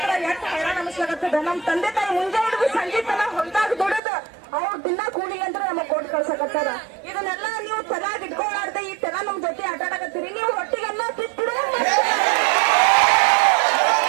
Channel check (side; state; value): left; drops out; at 4.0 s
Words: ಎಷ್ಟು ಹೈರಾಣ ಅನಿಸ್ಲಾಗತ್ತದ. ನಮ್ ತಂದೆ ತಾಯಿ ಮುಂಜಾನೆ ಹಿಡಿದು ಸಂಜೆ ತನ ಹೊರದಾಗ ದುಡಿದ ಅವ್ರ ದಿನ ಕೂಲಿ ಅಂತ ನಮಗ್ ಕೊಟ್ಟು ಕಳ್ಸಕತ್ತಾರ. ಇದನ್ನೆಲ್ಲ ನೀವು ತಲಾಗ್ ಇಟ್ಕೊಳ್ಳಾರ್ದೆ ಈ ತರ ನಮ್ ಜೊತೆ ಆಟ ಆಡಕತ್ತೀರಿ. ನೀವು ಹೊಟ್ಟಿಗೆಲ್ಲ ತಿತ್ತಿಡು